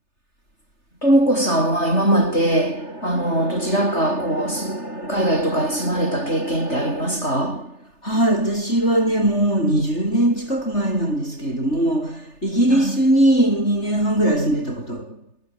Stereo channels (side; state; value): right; late; 3.3 ms